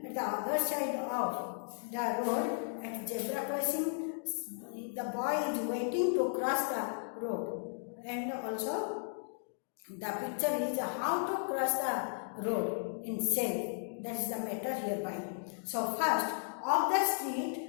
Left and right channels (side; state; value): right; silent; digital silence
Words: at the other side of the road at zebra crossing. The boy is waiting to cross the road, and also the picture is how to cross the road in safe. That is the matter hereby. So first, of the